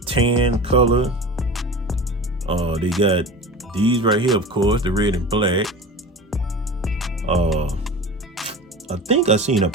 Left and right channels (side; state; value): both; normal; correlation 0.33